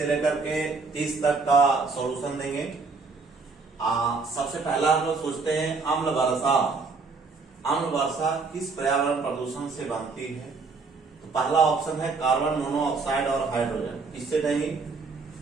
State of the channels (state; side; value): quieter; left; 4.3 dB